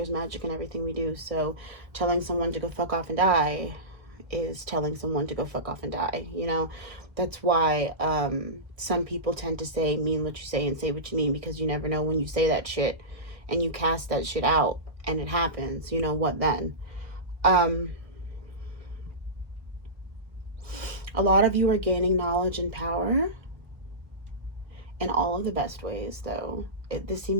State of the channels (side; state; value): left; late; 1.0 ms